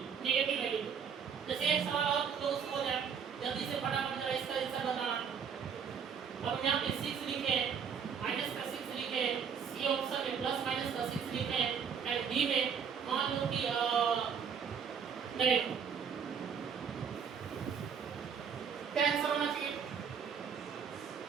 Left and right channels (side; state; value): left; quieter; 7.0 dB